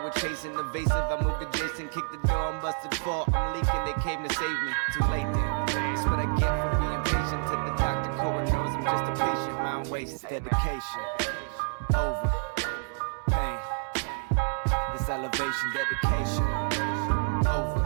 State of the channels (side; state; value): left; silent; 58 dB below the other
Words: chasing. Evasive, I moved adjacent, kicked the door, I'm busted for. I'm leaking, they came to save me. Too late then. That's what I get for being patient. To the doctor, Cora knows I'm just a patient. Mind wastes, dedication, over pain. This elevation, dedication, over